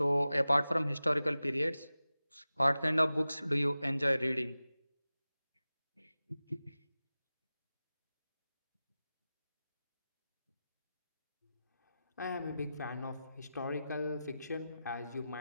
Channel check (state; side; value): inverted; both; correlation -0.95